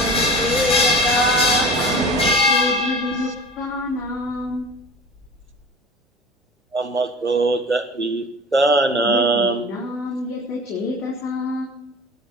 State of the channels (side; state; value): both; normal; correlation 0.38